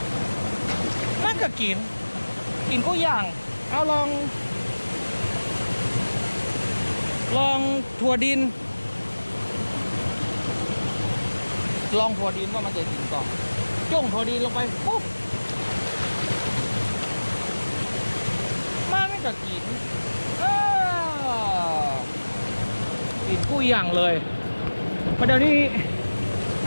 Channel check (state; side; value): inverted; both; correlation -1.00